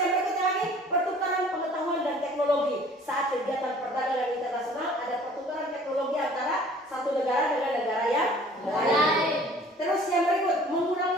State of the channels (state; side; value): normal; both; correlation 0.51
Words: berikutnya lagi, pertukaran pengetahuan dan teknologi. Saat kegiatan perdagangan internasional ada pertukaran teknologi antara satu negara dengan negara yang lain. Terus yang berikut,